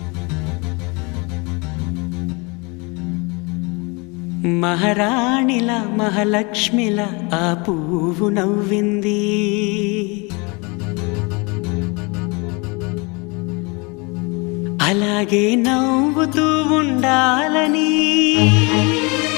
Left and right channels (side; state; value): right; quieter; 29.1 dB